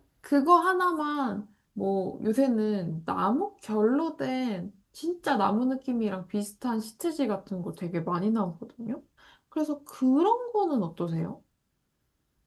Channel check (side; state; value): both; identical; correlation 1.00